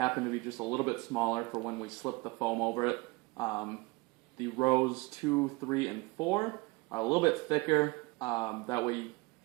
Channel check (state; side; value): quieter; left; 25.0 dB